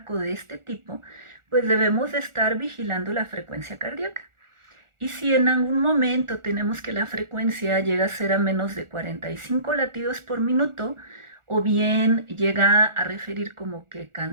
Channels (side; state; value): left; late; 1.4 ms